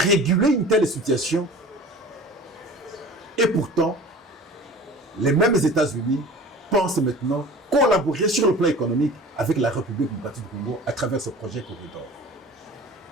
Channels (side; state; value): both; normal; correlation 0.41